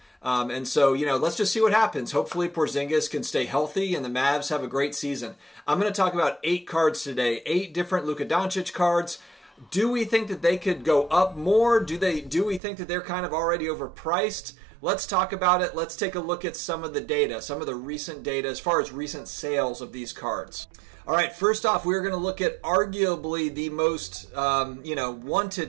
And so, you know, let's just see what happens. Hopefully Porzingis can stay healthy and the Mavs have a great season. I'm going to talk about 8 cards today, 8 different Luka Doncic cards. Do we think that they could go up more? Do we think that they're kind of already overpriced? Let's talk about it. Let's take a look at some of the data, some of the recent data as far as recent sales of these cards. All right, first off, we're going to look at arguably the most, you know,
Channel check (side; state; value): left; drops out; at 12.6 s